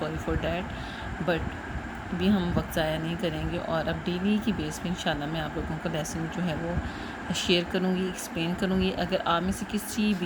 فار دیٹ. بٹ بھی ہم وقت ضائع نہیں کریں گے، اور اب ڈیلی کی بیس پہ انشاءاللہ میں آپ لوگوں کو لیسن جو ہے وہ شیئر کروں گی، ایکسپلین کروں گی. اگر آپ میں سے کسی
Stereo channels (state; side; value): identical; both; correlation 1.00